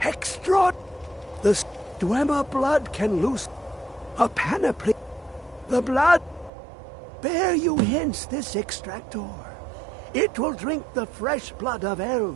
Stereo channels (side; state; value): left; drops out; at 6.5 s